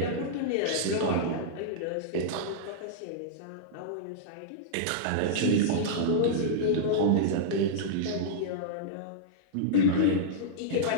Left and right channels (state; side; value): different; both; correlation -0.03